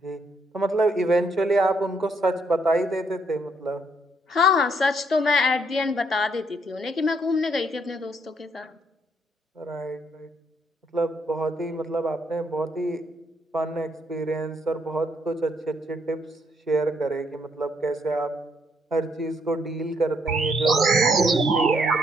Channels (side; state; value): both; normal; correlation 0.71